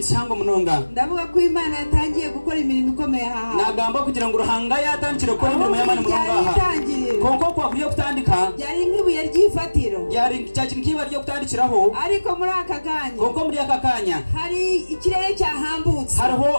cyangwa munonga ndavuga ko Imana yatangiye gukora imirimo ikomeye aha nagamba kugira ngo uruhanga yatangire gukora imirimo y'Imana mu rungaha konko kwakuriye kutandika byari nk'ibuye ry'ifatiro byari cyakintu kiba ryo kutandikiraho ariko muri aka kanya konko muri aka kanya hari ikirere cyahambutse hariho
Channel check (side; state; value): both; inverted; correlation -1.00